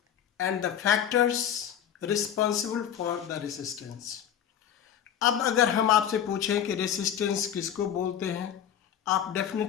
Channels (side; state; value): right; quieter; 9.7 dB